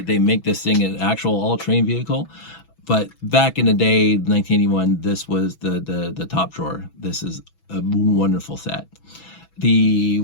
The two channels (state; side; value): late; right; 6.1 ms